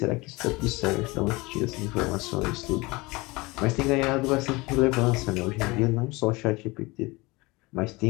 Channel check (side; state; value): right; quieter; 23.4 dB